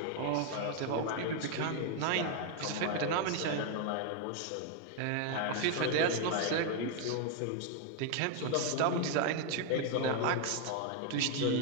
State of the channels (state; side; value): different; both; correlation 0.01